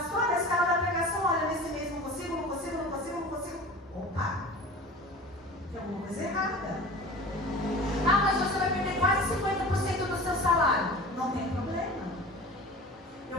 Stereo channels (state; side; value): normal; both; correlation 0.38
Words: a escala da pregação, olha, nesse mês não consigo. Opa! Tem alguma coisa errada. Mas você vai perder quase 50% do seu salário. Não tem problema.